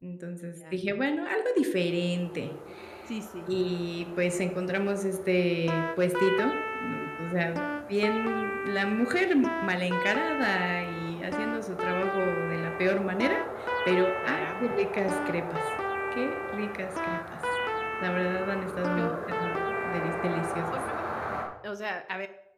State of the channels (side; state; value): both; identical; correlation 1.00